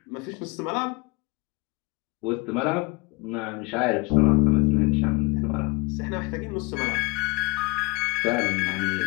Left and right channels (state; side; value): quieter; right; 26.1 dB